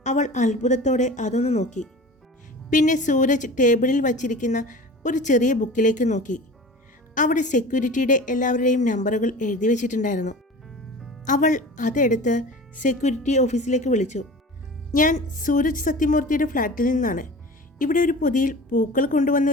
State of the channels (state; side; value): normal; both; correlation 0.37